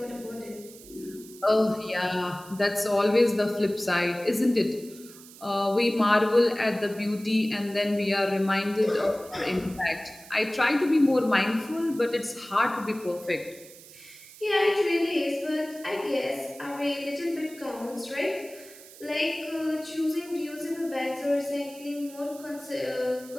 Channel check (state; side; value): noise; right; hiss, 19 dB below the sound